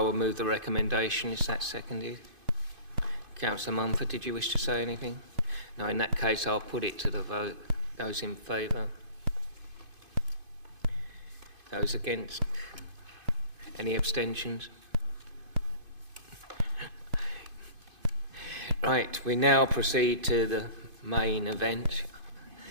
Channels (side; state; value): left; late; 2.5 ms